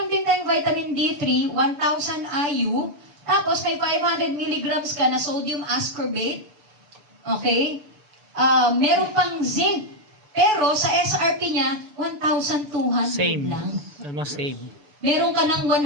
din tayong vitamin D3, 1,000 IU, tapos may 500 milligrams ka na sodium ascorbate. Okay? Meron pang zinc. Pero sa SRP niya, 1,200 Same. lang. Almost same. Meron ka ng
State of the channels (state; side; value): late; left; 6.9 ms